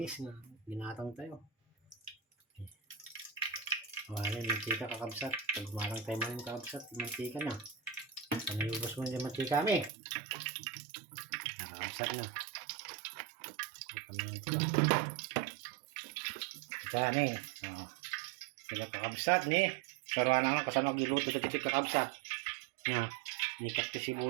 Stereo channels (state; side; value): drops out; left; at 9.9 s